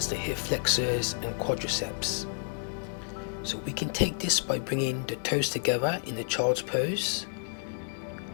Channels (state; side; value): silent; right; 58 dB below the other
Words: the hip flexors and quadriceps. So we can take this by bringing the toes together in the child's pose,